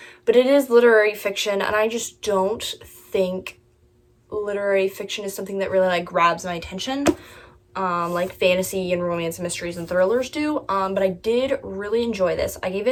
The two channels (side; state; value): both; identical; correlation 1.00